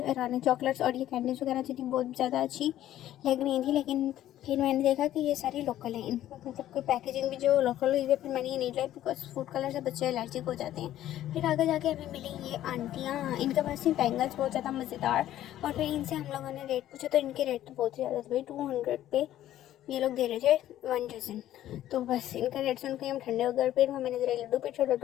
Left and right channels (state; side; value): quieter; right; 12.8 dB